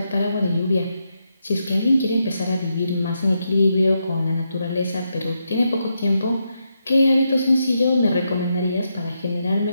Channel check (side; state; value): both; inverted; correlation -0.83